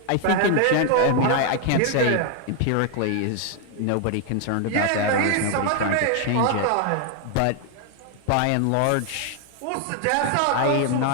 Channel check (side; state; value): both; different; correlation 0.00